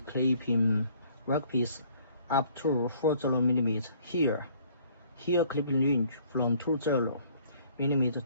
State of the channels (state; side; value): inverted; both; correlation -0.59